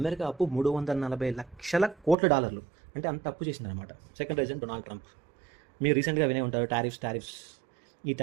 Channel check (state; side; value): drops out; left; at 2.1 s